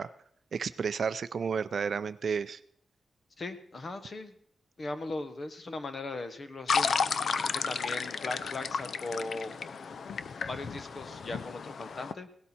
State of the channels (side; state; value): both; normal; correlation 0.82